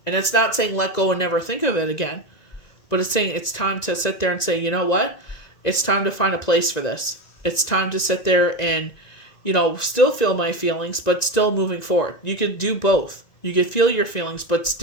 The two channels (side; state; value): right; late; 1.9 ms